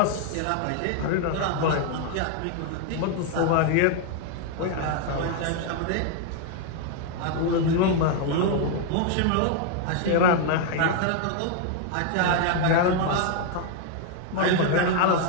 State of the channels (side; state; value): both; different; correlation 0.00